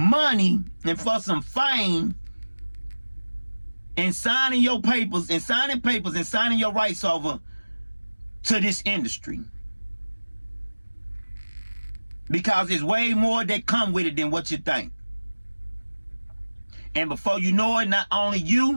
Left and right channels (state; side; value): inverted; both; correlation -1.00